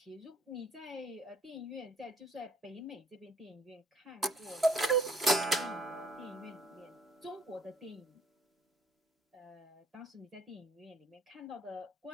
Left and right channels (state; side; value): normal; both; correlation 0.63